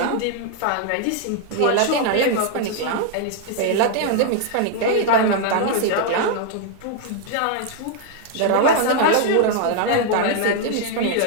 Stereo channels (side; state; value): both; different; correlation 0.00